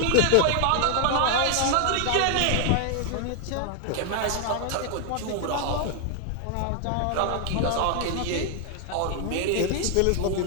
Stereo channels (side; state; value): both; different; correlation 0.00